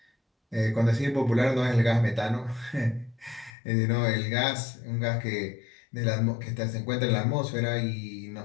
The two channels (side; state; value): right; drops out; at 3.5 s